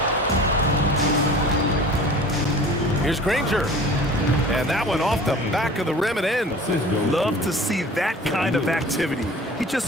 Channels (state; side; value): normal; both; correlation 0.42